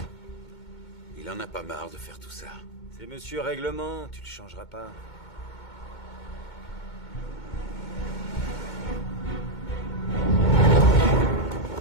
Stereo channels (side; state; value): right; late; 2.2 ms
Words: Il en a pas marre de faire tout ça. C'est monsieur Règlement, tu le changeras pas.